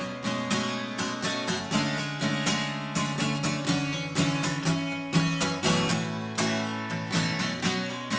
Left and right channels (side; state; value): both; identical; correlation 1.00